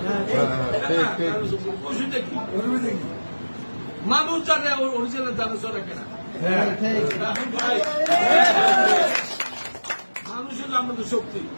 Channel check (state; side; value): inverted; both; correlation -1.00